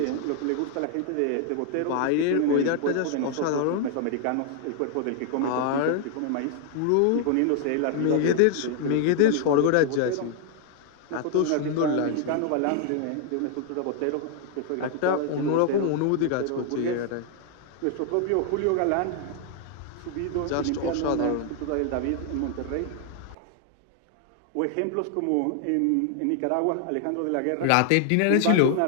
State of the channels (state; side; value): different; both; correlation 0.00